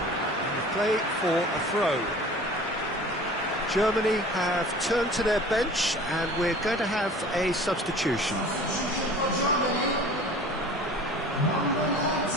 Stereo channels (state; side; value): normal; both; correlation 0.43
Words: And play for a throw. Germany have turned to their bench and we're going to have a substitution.